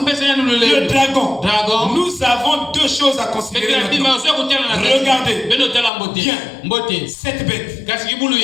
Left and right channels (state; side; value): drops out; right; at 5.9 s